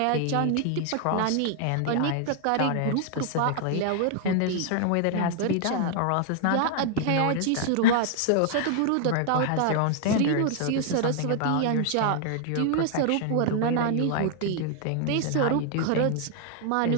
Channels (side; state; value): both; different; correlation 0.00